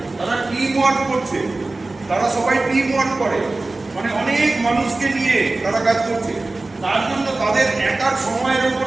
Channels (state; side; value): quieter; left; 3.1 dB